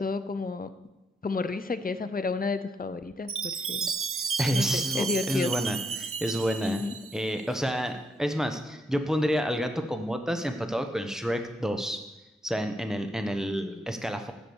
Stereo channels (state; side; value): normal; both; correlation 0.77